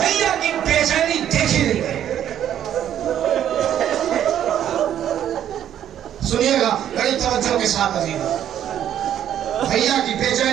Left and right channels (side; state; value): left; quieter; 10.5 dB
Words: کی بے چینی دیکھی نہیں گئی. سنیے گا بڑی توجہ کے ساتھ عزیز, بھیا کی بے